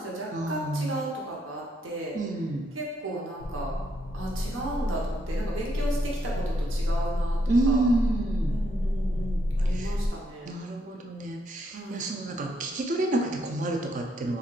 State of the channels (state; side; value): normal; both; correlation 0.75